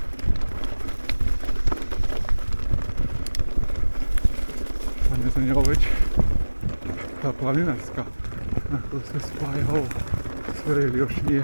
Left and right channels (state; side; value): inverted; both; correlation -1.00